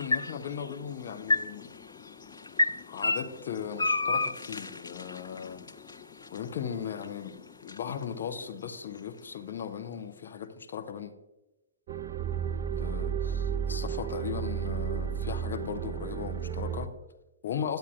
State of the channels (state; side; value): inverted; both; correlation -0.35